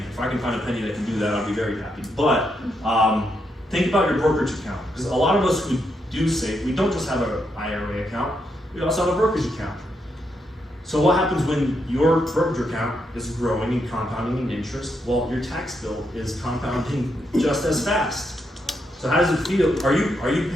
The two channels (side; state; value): both; normal; correlation 0.80